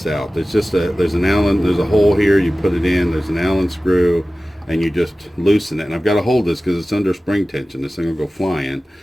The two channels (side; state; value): both; normal; correlation 0.96